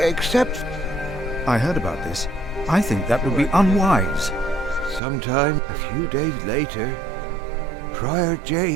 I heard about this. I think that would be unwise. Sometime, a few days later, Prior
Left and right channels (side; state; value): left; drops out; at 5.0 s